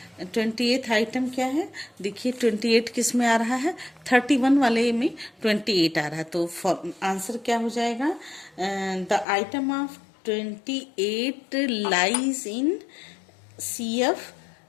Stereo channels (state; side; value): drops out; right; at 9.2 s